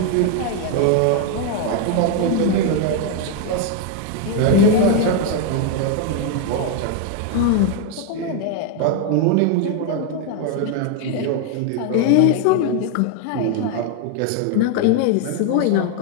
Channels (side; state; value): both; different; correlation 0.01